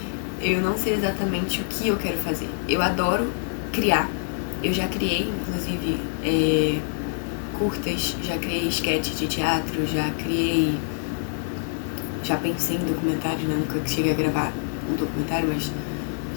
Eu não sei exatamente o que eu quero fazer. Eu adoro criar. Eu já criei, inclusive, curtas, já criei sketch de teatro, já pensei em documentário, né? Nunca cheguei a gravar um documentário, mas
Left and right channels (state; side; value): silent; right; digital silence